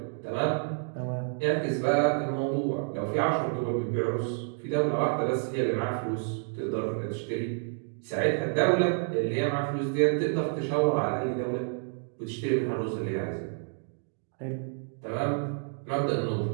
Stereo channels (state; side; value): silent; left; 58 dB below the other